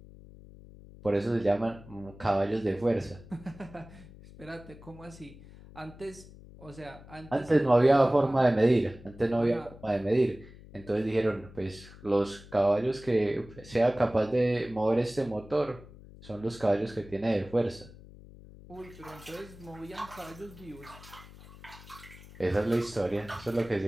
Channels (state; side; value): noise; left; hum, 19 dB below the sound